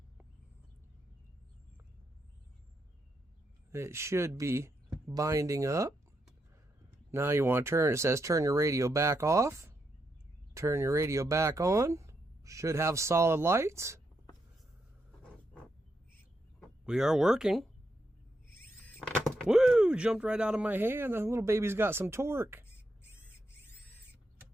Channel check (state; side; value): normal; both; correlation 0.82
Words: It should be binding up. Now you want to turn, it says turn your radio back off. Turn your radio back on. Should have solid lights. We are working. Woo! Jumped right out of my hand. The little baby's got some torque.